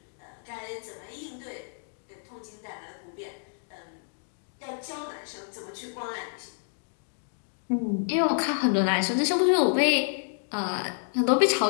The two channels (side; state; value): right; silent; digital silence